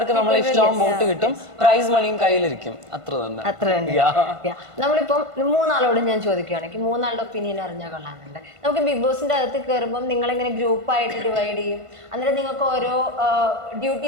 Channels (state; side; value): late; left; 1.5 ms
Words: നമ്മളെ ഇഷ്ടമാവും, വോട്ട് കിട്ടും, പ്രൈസ് മണിയും കയ്യിലിരിക്കും. അത്ര തന്നെ. നമ്മളിപ്പം 3 ആളോട് ഞാൻ ചോദിക്കുകയാണെങ്കിൽ 3 ആളുടെ ഒപ്പീനിയൻ അറിഞ്ഞാൽ കൊള്ളാറുണ്ട്. നമുക്ക് ബിഗ് ബോസിന്റെ അകത്ത് കയറുമ്പോൾ നിങ്ങളിങ്ങനെ ഗ്രൂപ്പായിട്ട് ഡിവൈഡ് ചെയ്യും. അന്നേരം നിങ്ങൾക്ക് ഓരോ